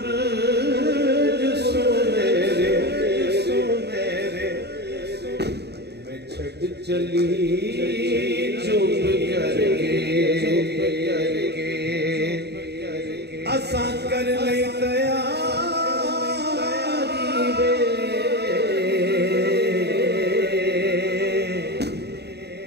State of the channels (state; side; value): late; left; 0.48 ms